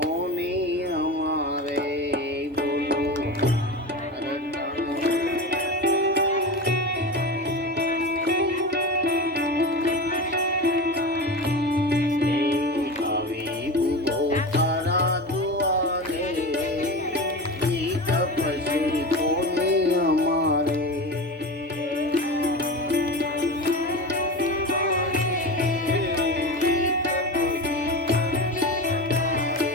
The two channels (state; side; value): normal; both; correlation 0.26